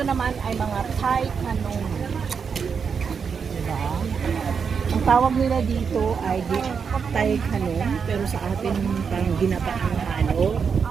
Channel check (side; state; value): left; quieter; 6.2 dB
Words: naman ay mga Thai kanong. Diba? Ang tawag nila dito ay Thai kanong, pero sa atin parang ginapaang ano.